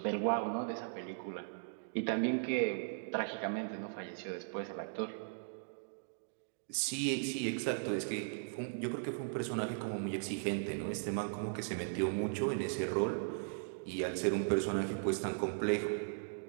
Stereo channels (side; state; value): left; silent; digital silence